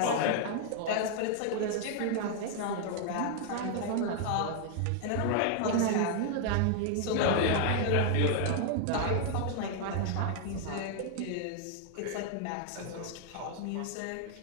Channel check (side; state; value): both; different; correlation 0.00